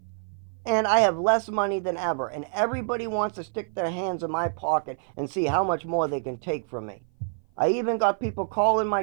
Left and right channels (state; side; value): silent; left; 56 dB below the other